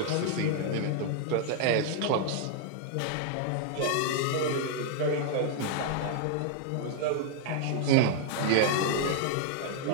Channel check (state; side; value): different; both; correlation 0.00